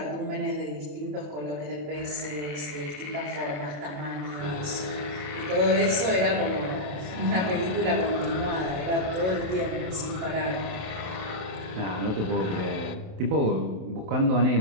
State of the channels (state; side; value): late; left; 27 ms